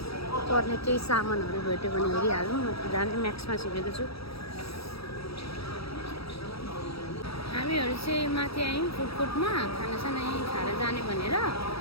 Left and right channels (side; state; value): right; late; 0.77 ms